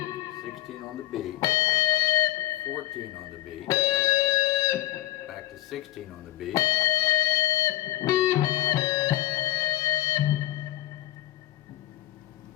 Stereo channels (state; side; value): quieter; right; 14.9 dB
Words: 16 on the B, 14 on the B, back to 16 on the B,